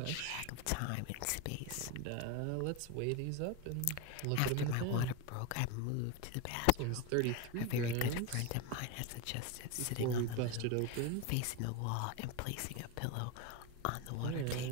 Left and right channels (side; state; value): both; different; correlation 0.03